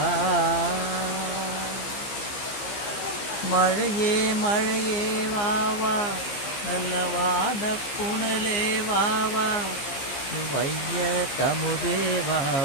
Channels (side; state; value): right; late; 15 ms